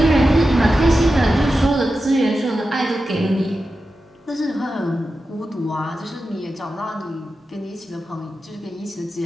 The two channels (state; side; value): normal; both; correlation 0.91